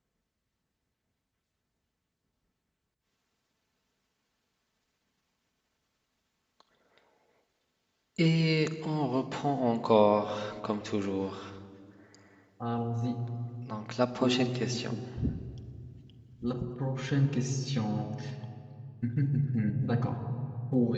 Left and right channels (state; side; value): identical; both; correlation 1.00